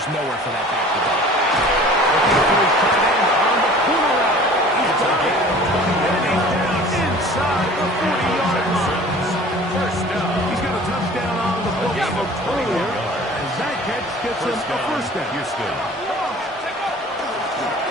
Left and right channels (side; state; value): both; normal; correlation 0.45